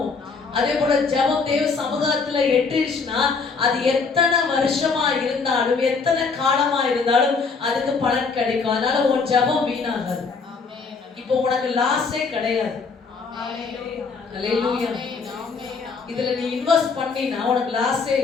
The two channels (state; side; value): quieter; right; 4.8 dB